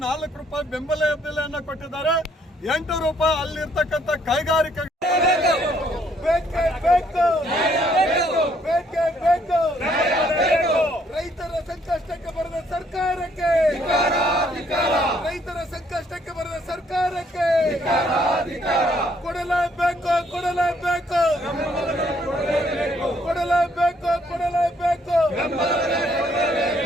4 ರೂಪಾಯಿ ಬೆಂಬಲ ಬೆಲೆಯನ್ನು ಕೊಟ್ಟಿದ್ದಾರೆ. 8 ರೂಪಾಯಿ ಅಲ್ಲಿರ್ತಕ್ಕಂಥ ಕೈಗಾರಿಕೆ ರೈತರ ಸಂಕಷ್ಟಕ್ಕೆ ಬರದ ಸರ್ಕಾರಕ್ಕೆ, ರೈತರ ಸಂಕಷ್ಟಕ್ಕೆ ಬರದ ಸರ್ಕಾರಕ್ಕೆ ಕೊಡಲೇಬೇಕು, ಕೊಡಲೇಬೇಕು, ಕೊಡಲೇಬೇಕು, ಕೊಡಲೇಬೇಕು.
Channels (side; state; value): both; normal; correlation 0.67